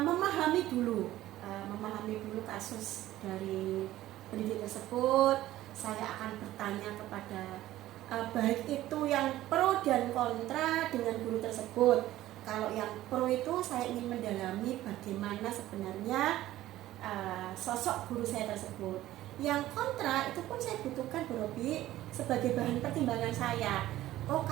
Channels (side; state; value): left; quieter; 14.9 dB